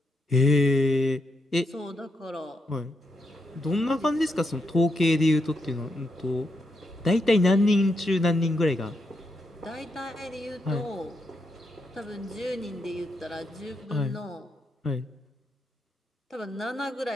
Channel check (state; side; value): normal; both; correlation 0.82